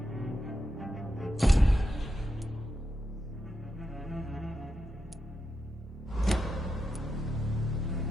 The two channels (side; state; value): both; normal; correlation 0.87